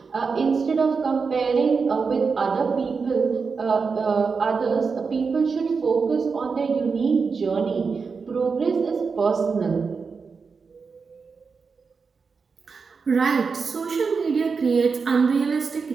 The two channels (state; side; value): quieter; left; 5.1 dB